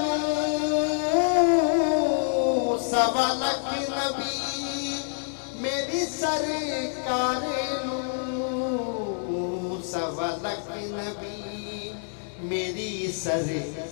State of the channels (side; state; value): right; silent; digital silence